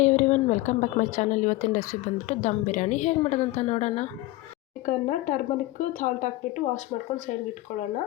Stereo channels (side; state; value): right; quieter; 18.4 dB